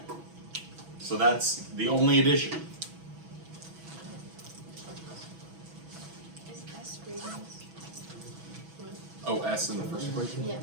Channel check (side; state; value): left; late; 6.1 ms